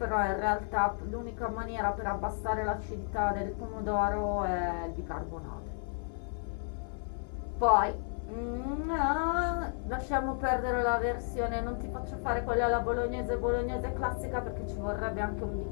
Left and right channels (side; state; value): right; silent; 56 dB below the other